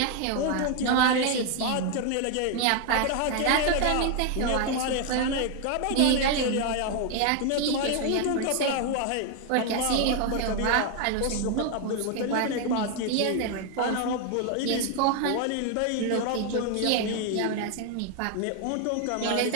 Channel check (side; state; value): both; different; correlation 0.01